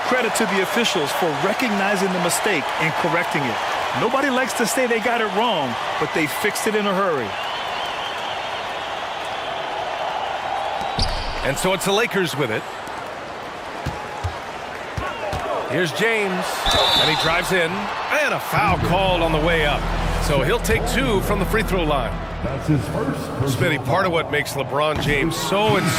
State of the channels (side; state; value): both; identical; correlation 1.00